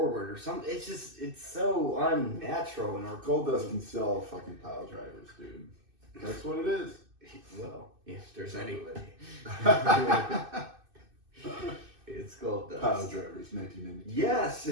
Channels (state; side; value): late; left; 2.6 ms